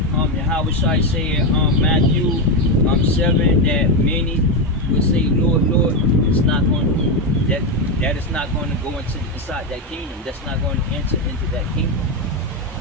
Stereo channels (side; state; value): both; normal; correlation 0.09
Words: Yahweh Shai said Matthew 7 that many will say, Lord, Lord, it's not going to, that is not going to go inside that kingdom. That's not going to enter into that kingdom.